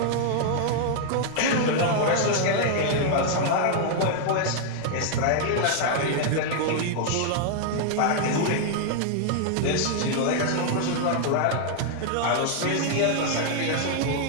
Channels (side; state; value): both; different; correlation 0.00